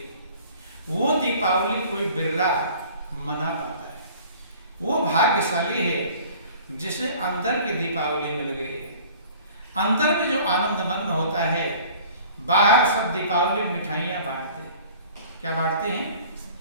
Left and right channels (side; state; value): both; inverted; correlation -0.48